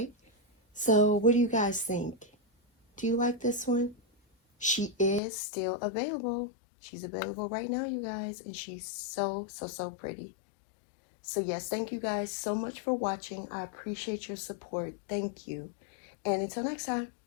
So what do you guys think? Do you like this one? She is still available. She's available right now, you guys. And she's so pretty. So yes, thank you guys so much for watching. I appreciate your support. Thank you. And until next time,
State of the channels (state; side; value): drops out; right; at 5.2 s